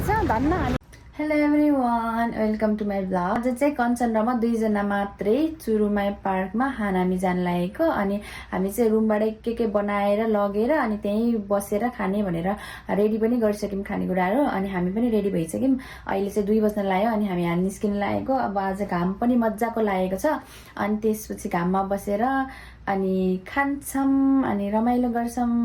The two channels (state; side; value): identical; both; correlation 1.00